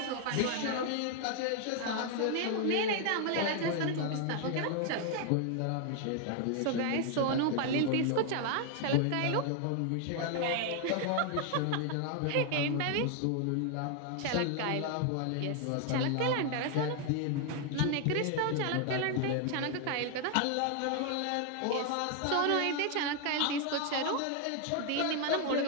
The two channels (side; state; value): both; different; correlation 0.00